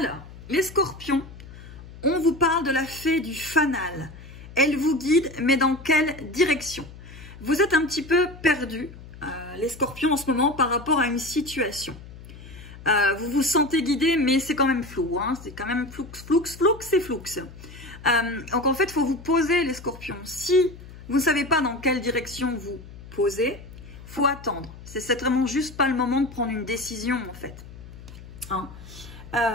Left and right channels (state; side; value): noise; left; hum, 16 dB below the sound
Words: les scorpions, on vous parle de la fée du fanal. Elle vous guide, mais dans quelle direction? Vous êtes un petit peu perdu, les scorpions, en ce moment, par rapport à une situation. Vous vous sentez guidé, mais c'est quand même flou. Hein, c'est quand même floux, c'est flou. Donc, en fait, il faut vous poser, les scorpions. Si vous ne savez pas dans quelle direction vous posez, il faut attendre. C'est vraiment juste pas le moment de prendre une décision, en fait. Hein.